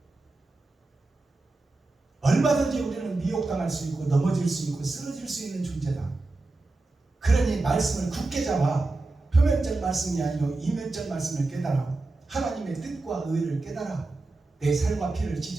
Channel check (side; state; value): left; quieter; 3.2 dB